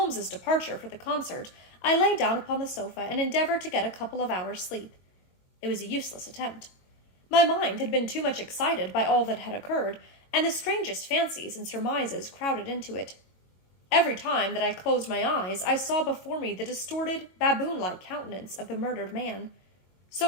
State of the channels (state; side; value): late; right; 22 ms